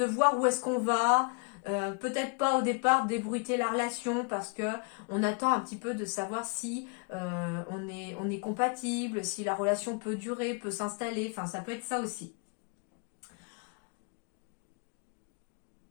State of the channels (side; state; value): right; quieter; 34.2 dB